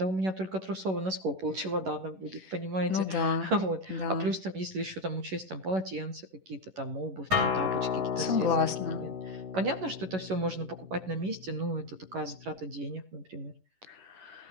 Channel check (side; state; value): left; late; 11 ms